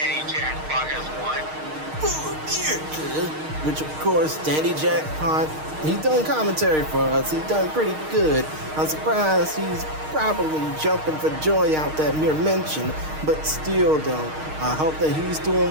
Jackpot has won. Which, of course, Danny Jackpot, he's done commentary for us. He's done pretty good. I'm surprised he's probably jumping for joy out that mere mention. But still, though, I hope that he's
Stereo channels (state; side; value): late; left; 6.5 ms